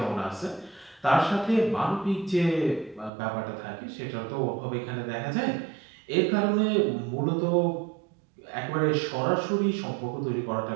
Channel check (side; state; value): left; drops out; at 3.1 s